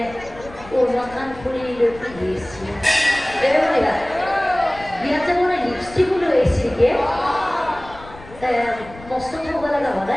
উন্নতমান ফুৰি দিছি এয়া বিয়াতে মানে লিপষ্টিক লৈ আহিছিলকে মস্ত থব লগা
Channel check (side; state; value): left; noise; rumble, 19 dB below the sound